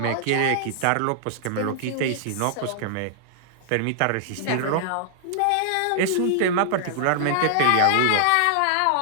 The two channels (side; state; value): both; different; correlation -0.01